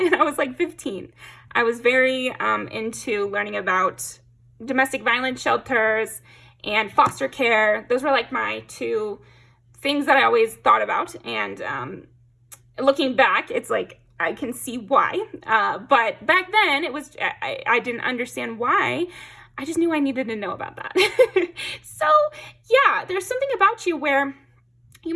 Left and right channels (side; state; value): both; identical; correlation 1.00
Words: I was like 15. I was very into learning about domestic violence shelters and foster care. Those were like my 2 things that I always thought about. And looking back, it's like, I can see why. But back then, it was I didn't understand why. I just knew I needed to know about that. So yeah, there's something about you where you